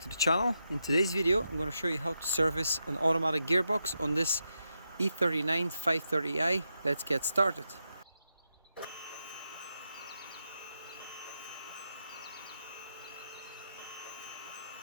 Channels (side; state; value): both; inverted; correlation -0.85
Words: the channel. In today's video I'm going to show you how to service an automatic gearbox on this E39 530i. Let's get started.